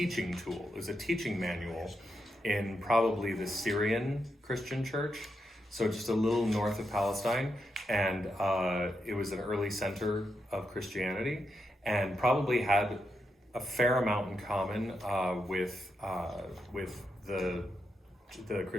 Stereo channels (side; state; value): both; normal; correlation 0.84